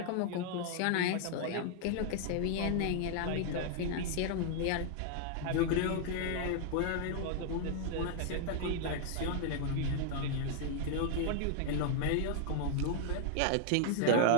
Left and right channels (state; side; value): different; both; correlation 0.00